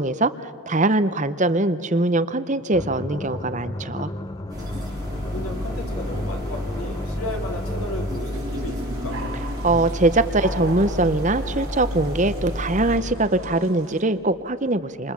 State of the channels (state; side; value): normal; both; correlation 0.39